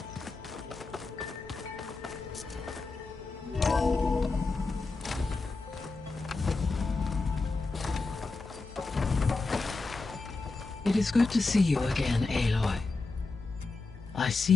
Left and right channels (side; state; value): right; quieter; 3.7 dB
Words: It is good to see you again, Aloy. I see